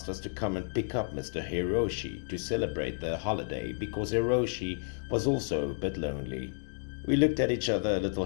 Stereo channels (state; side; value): silent; right; digital silence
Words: us to come and pick up Mr. Hiroshi to celebrate the holiday because Hiroshi was also a bit lonely. We looked at each other a little